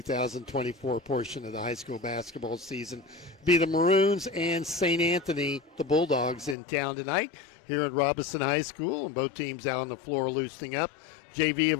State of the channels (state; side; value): drops out; right; at 6.6 s